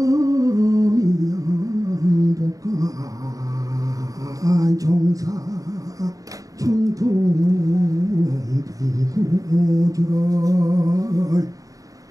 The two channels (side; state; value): left; late; 0.17 ms